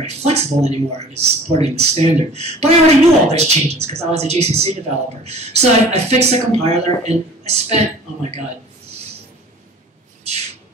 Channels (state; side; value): normal; both; correlation 0.46